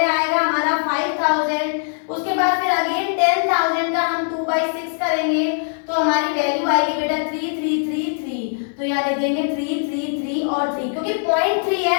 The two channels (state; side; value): silent; right; 60 dB below the other